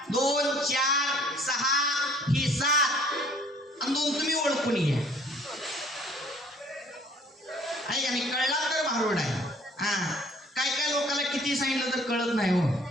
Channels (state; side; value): normal; both; correlation 0.56